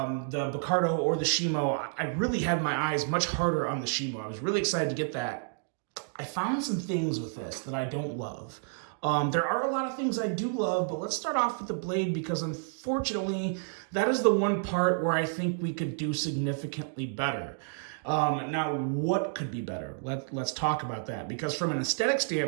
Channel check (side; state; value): left; silent; digital silence